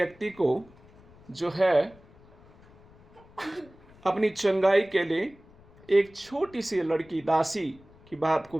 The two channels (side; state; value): left; noise; rumble, 26 dB below the sound